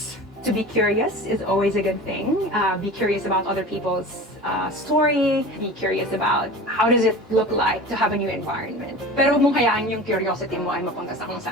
To be curious is always a good thing. Be curious about other people's story. Be curious about how does it look like to have a new environment. Pero huwag mong hayaan yung curiosity mo ay mapunta sa kung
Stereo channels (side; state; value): both; normal; correlation 0.35